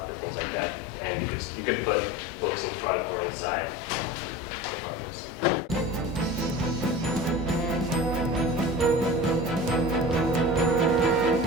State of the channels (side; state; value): both; normal; correlation 0.35